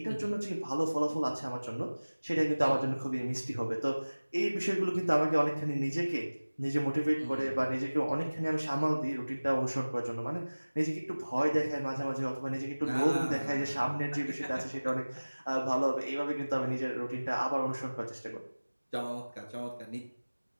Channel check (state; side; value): inverted; both; correlation -1.00